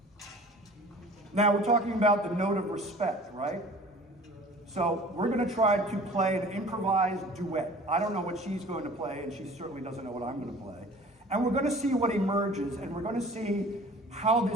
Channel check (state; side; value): normal; both; correlation 0.46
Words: Now we're talking about the note of respect, right? So we're going to try to play an improvised duet. I don't know what she's going to play, and she certainly doesn't know what I'm going to play. And we're going to see what emerges, and we're going to see how